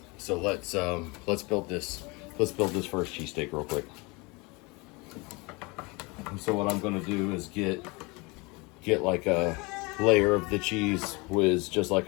So let's build this first cheesesteak real quick. And so what I'm going to do is get like a layer of the Cheese Whiz, just like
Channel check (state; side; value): quieter; right; 26.6 dB